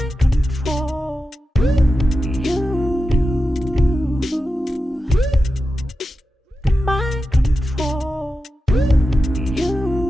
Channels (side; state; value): both; normal; correlation 0.91